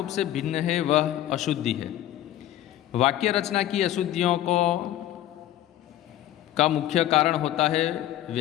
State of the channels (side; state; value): right; quieter; 13.1 dB